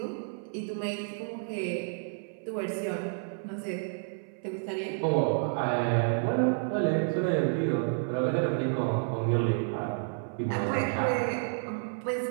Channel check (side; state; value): left; silent; 58 dB below the other